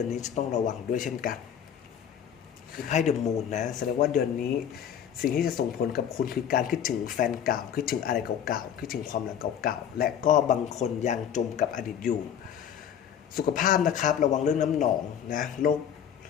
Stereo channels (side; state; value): right; quieter; 8.9 dB